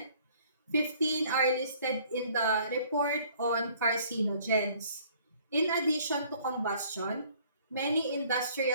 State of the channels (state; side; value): inverted; both; correlation -0.58